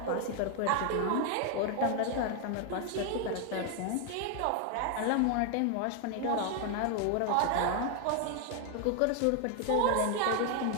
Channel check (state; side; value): different; both; correlation 0.01